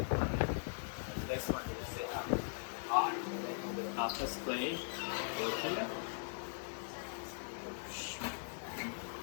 Next one is set up. After spray, go here.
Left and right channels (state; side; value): silent; right; 51 dB below the other